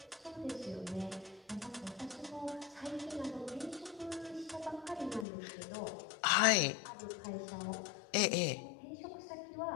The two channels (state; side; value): drops out; right; at 5.2 s